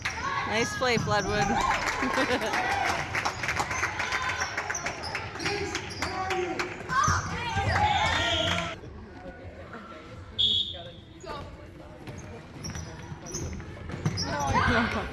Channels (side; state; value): both; identical; correlation 1.00